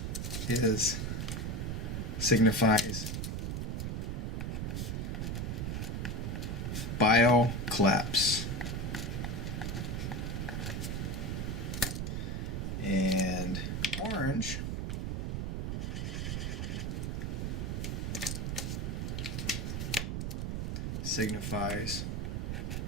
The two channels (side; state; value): right; noise; rumble, 1 dB below the sound